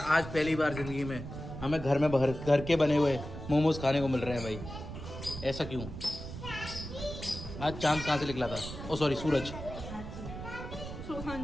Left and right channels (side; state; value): right; noise; rumble, 9 dB below the sound